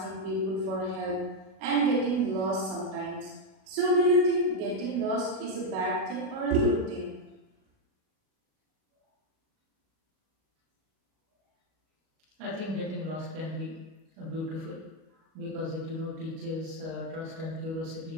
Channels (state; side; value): late; left; 37 ms